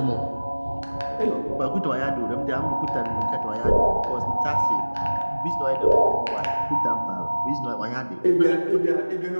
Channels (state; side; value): inverted; both; correlation -1.00